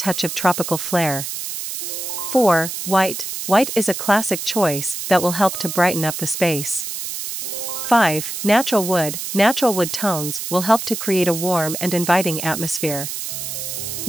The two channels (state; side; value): noise; right; hiss, 6 dB below the sound